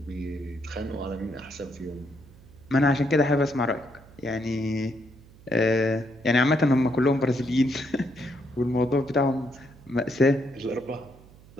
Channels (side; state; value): right; noise; hum, 23 dB below the sound